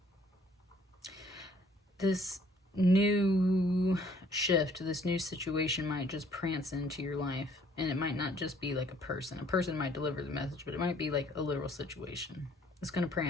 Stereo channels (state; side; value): normal; both; correlation 0.61